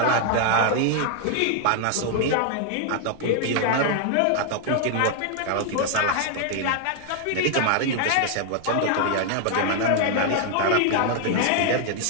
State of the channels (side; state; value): both; different; correlation 0.00